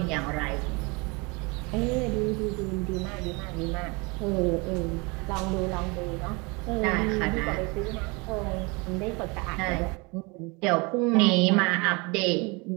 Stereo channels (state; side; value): quieter; left; 28.2 dB